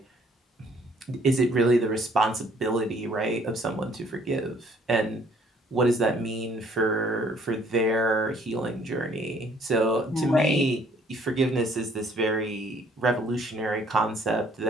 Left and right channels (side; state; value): both; normal; correlation 0.61